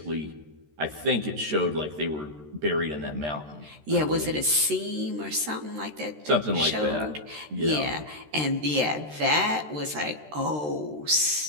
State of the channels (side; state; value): left; late; 13 ms